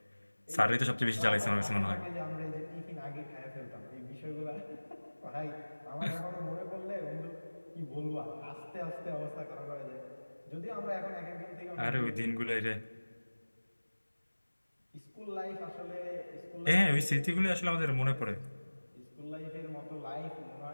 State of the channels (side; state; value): both; inverted; correlation -1.00